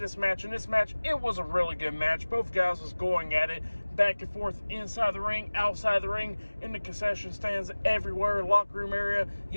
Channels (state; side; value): inverted; both; correlation -1.00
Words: match, and this match, it was a really good match. Both guys was going at it back and forth, inside the ring, outside the ring, in the concession stands, everywhere, locker room area.